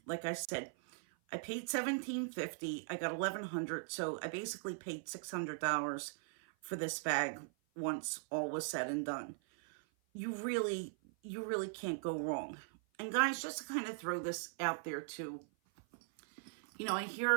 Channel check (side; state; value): left; silent; 51 dB below the other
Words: Like I said, I paid $17.50. I got $1,100, so I basically paid $600 for this bag once all was said and done. You really can't go wrong. And guys, just to kind of throw this out there too, you know, I